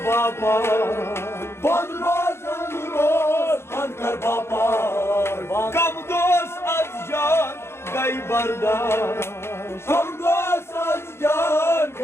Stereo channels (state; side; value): late; right; 0.12 ms